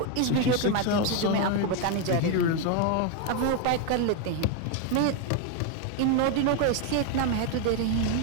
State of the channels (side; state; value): both; different; correlation 0.01